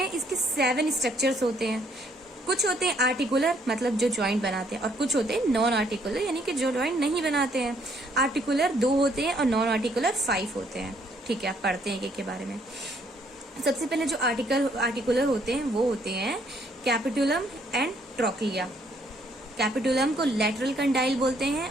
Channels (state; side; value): normal; both; correlation 0.67